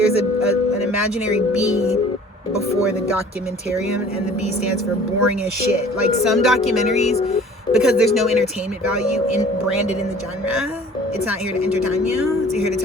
imaginary B before the documentarian, and the B stands for boring as shit. Like some documentaries, because there's no entertainment value branded in the genre, it's not here to entertain you, it's here to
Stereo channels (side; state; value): both; normal; correlation 0.49